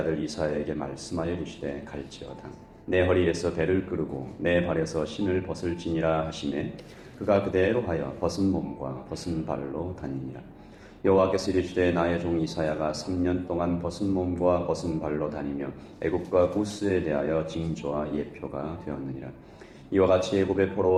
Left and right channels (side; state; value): both; identical; correlation 1.00